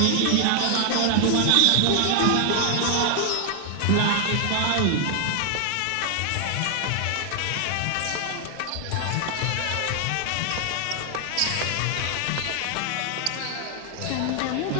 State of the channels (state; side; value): different; both; correlation 0.00